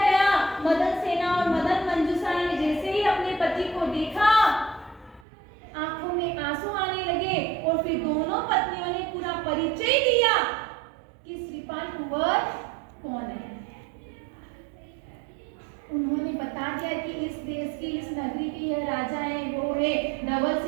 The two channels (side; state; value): left; drops out; at 5.2 s